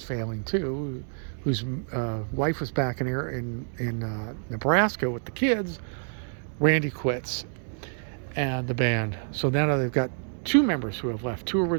failing too, whose wife was back in Nebraska with the kids, Randy quits and the band. So now they've got two members who have left, two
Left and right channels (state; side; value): silent; left; digital silence